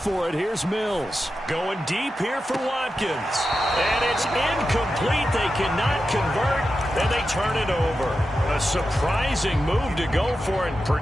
it. Here's Mills. Going deep here for Watkins. And it's incomplete. They cannot convert, and they turn it over. A surprising move to go for it.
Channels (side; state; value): both; normal; correlation 0.90